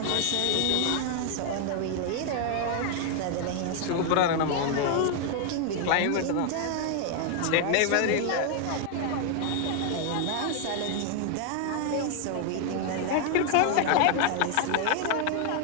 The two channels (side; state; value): both; different; correlation 0.00